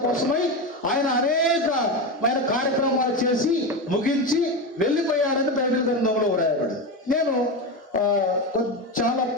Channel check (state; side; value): normal; both; correlation 0.17